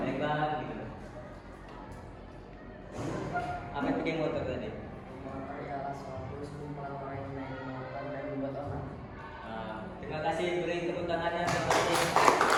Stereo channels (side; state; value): both; identical; correlation 1.00